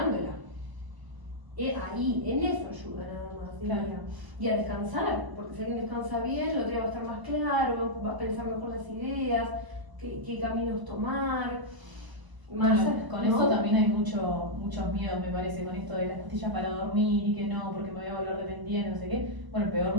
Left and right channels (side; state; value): left; late; 1.0 ms